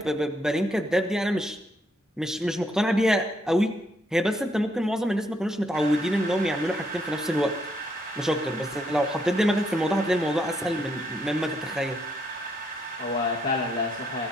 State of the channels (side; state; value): both; normal; correlation 0.74